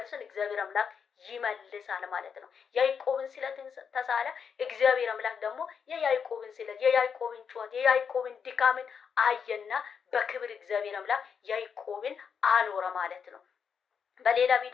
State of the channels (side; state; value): right; quieter; 6.7 dB